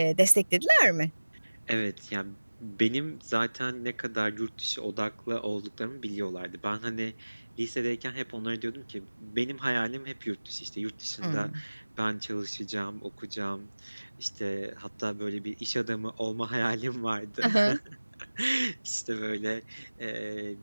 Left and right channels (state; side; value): inverted; both; correlation -1.00